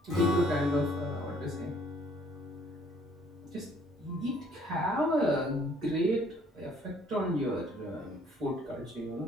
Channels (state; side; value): normal; both; correlation 0.60